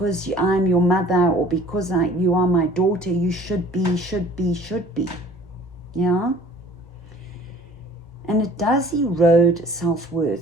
I'm your mother, or because you are my daughter, you should be. Yeah? And it does erode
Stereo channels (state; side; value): normal; both; correlation 0.51